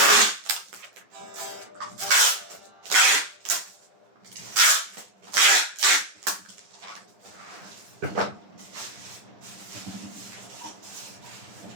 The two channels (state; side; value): late; left; 10 ms